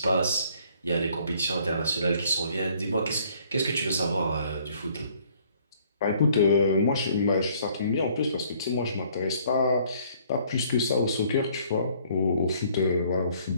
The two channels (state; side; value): inverted; both; correlation -0.61